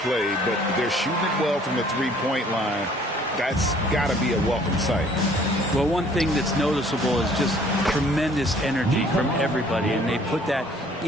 played, but they're shooting it well from the three-point line. That's got to be a welcome sight. Well, one thing that's noticeable is just tremendous energy from everybody, and they put that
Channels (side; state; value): both; normal; correlation 0.57